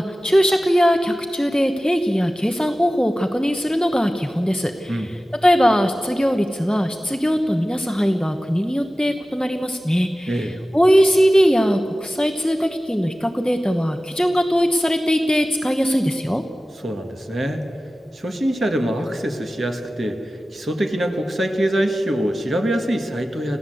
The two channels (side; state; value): both; normal; correlation 0.96